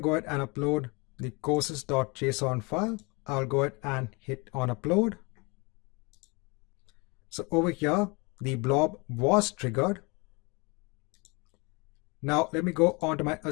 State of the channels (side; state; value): right; quieter; 27.9 dB